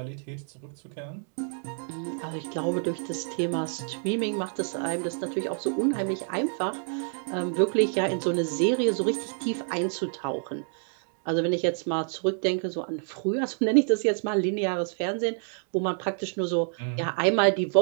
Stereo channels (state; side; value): silent; left; 59 dB below the other